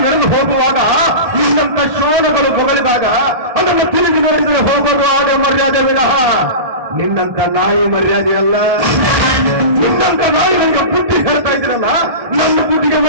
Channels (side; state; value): left; late; 1.7 ms